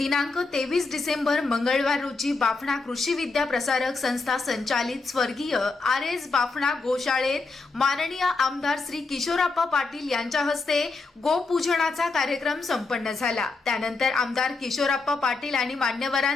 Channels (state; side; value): quieter; right; 3.9 dB